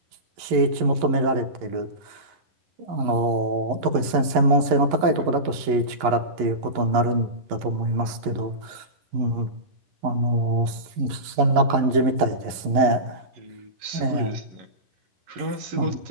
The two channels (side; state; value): left; late; 11 ms